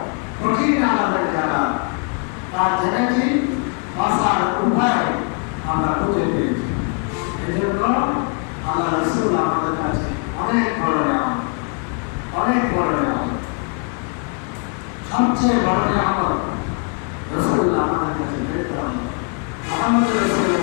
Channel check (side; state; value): right; quieter; 38.3 dB